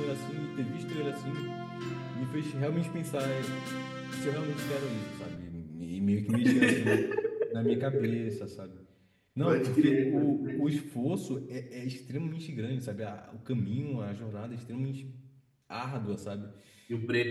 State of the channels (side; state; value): both; identical; correlation 1.00